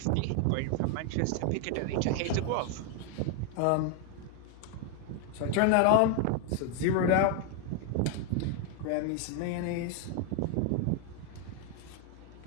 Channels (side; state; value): both; different; correlation 0.00